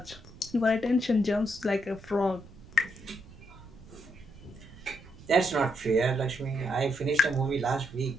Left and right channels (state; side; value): noise; right; rumble, 19 dB below the sound